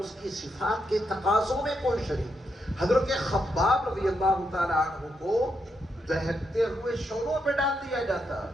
کی صفات کے تقاضوں میں کوئی شریک۔ حضرت خباب رضی اللہ تعالیٰ عنہ کو دہکتے ہوئے شعلوں پہ ڈال دیا جاتا،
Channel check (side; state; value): both; normal; correlation 0.81